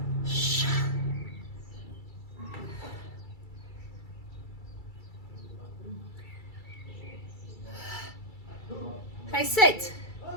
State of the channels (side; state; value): right; late; 2.3 ms